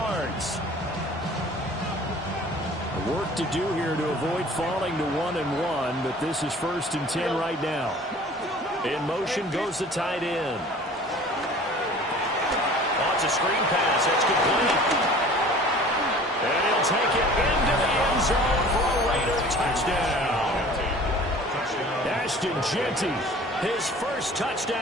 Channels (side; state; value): both; normal; correlation 0.46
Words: Work to do here to avoid falling to 1-1, but this is 1st and 10 right now. In motion goes the tight end. Oh, it's a screen pass. That's complete. And he'll take it into the end zone for a Raider touchdown. Ashton Genty, his first